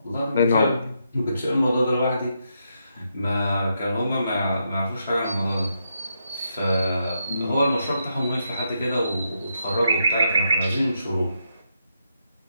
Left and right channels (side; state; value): both; inverted; correlation -0.81